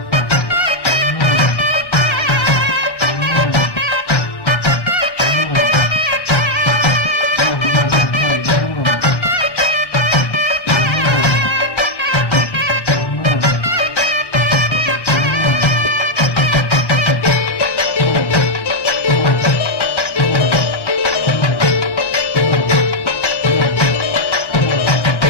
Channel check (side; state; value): right; late; 1.1 ms